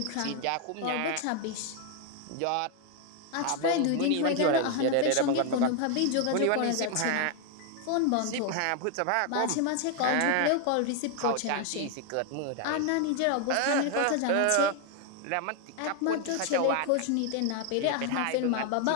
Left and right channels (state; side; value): different; both; correlation 0.00